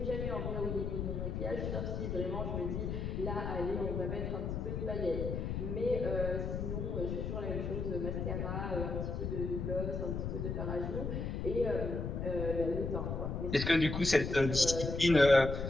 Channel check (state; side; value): noise; left; rumble, 3 dB below the sound